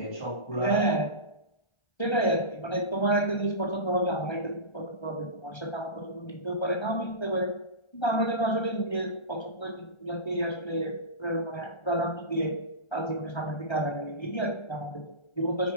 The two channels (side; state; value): right; late; 1.3 ms